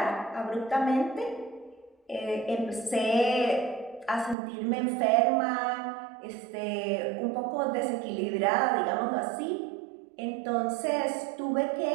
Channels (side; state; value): left; drops out; at 4.4 s